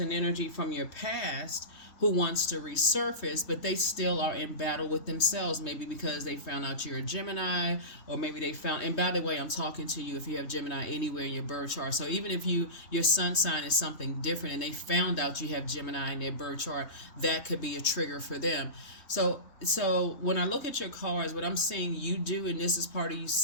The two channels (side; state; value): right; late; 3.2 ms